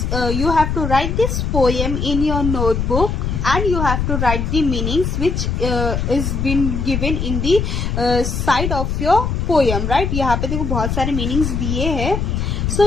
you have to write this poem in your notebook, and you have to write the meanings which is been given in the side of your poem, right? यहाँ पे देखो बहुत सारे meanings दिए हैं. So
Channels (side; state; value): left; noise; rumble, 1 dB below the sound